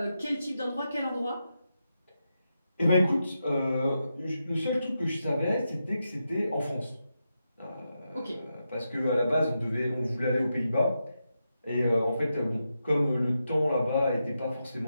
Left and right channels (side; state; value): both; inverted; correlation -0.87